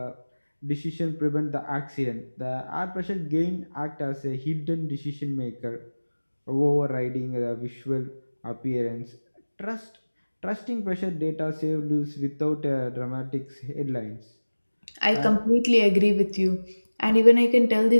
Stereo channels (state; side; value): inverted; both; correlation -1.00